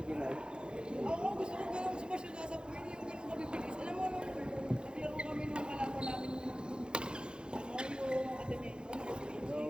Ako gusto ko ganun smash yung nasa Queen, yung ganun kabibilis. Alam mo, nung naglaro kami nung kalaban namin yung academy.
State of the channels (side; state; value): left; late; 0.050 ms